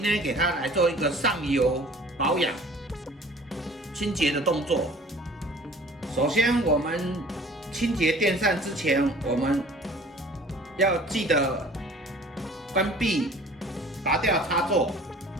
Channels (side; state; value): both; normal; correlation 0.48